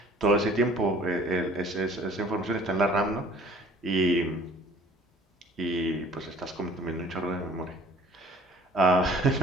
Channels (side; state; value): both; normal; correlation 0.51